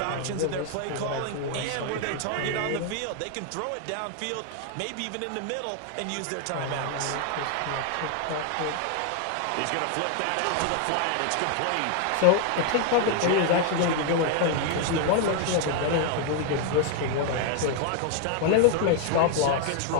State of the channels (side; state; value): both; different; correlation 0.00